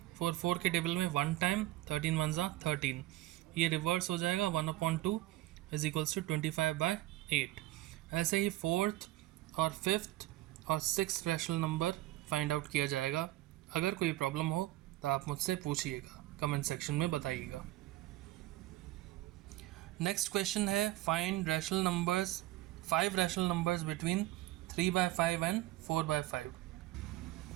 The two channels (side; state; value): left; quieter; 16.6 dB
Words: 4 के टेबल में 1 टाइम, 13 1 13। ये रिवर्स हो जाएगा 1/2 = 25/8। ऐसे ही 4th और 5th और 6th rational number find out किया जाएगा। अगर कोई प्रॉब्लम हो तो आप मुझसे पूछिएगा, कमेंट सेक्शन में बताइएगा। नेक्स्ट क्वेश्चन है find rational numbers 5 rational numbers between 3/5 and 4/5।